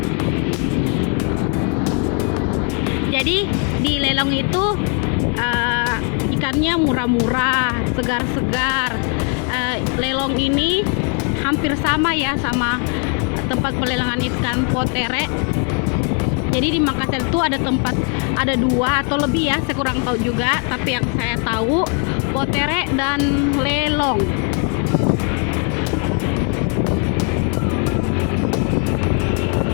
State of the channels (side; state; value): right; quieter; 37.5 dB